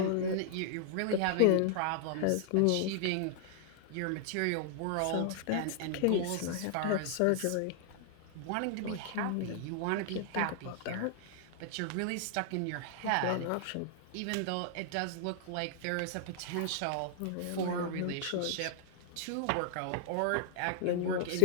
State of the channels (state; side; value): different; both; correlation 0.00